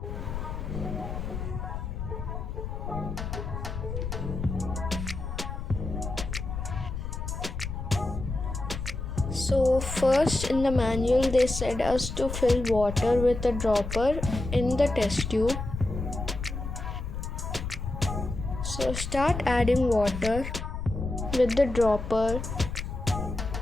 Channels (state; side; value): noise; left; rumble, 5 dB below the sound